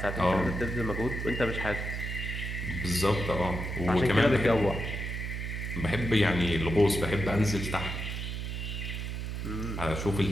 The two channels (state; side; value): noise; right; hum, 4 dB below the sound